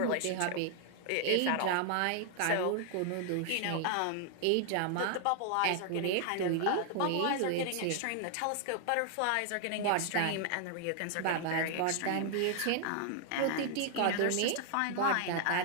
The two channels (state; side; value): different; both; correlation 0.00